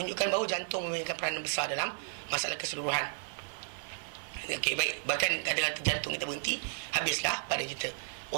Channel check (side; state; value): left; silent; digital silence